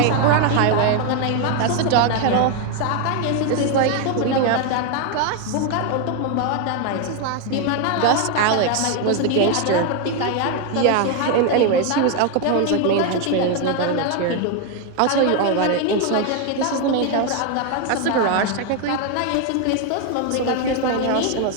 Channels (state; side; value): different; both; correlation 0.01